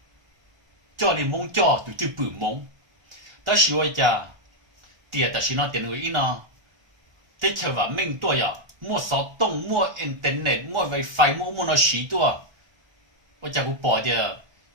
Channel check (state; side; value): late; left; 1.3 ms